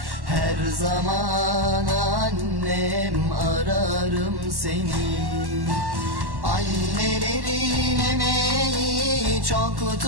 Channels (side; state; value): left; late; 1.1 ms